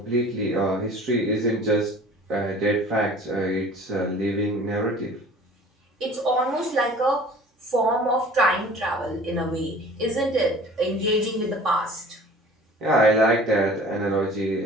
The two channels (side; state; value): both; normal; correlation 0.45